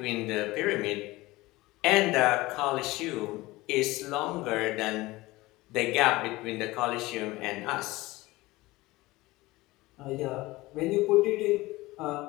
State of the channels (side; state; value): right; quieter; 19.9 dB